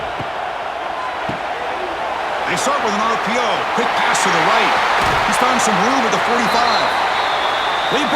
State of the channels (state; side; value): identical; both; correlation 1.00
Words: They start with an RPO. Quick pass to the right. He's found some room at the 45. They